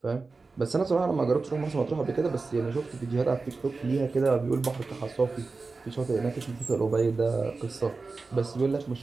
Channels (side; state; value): left; quieter; 4.0 dB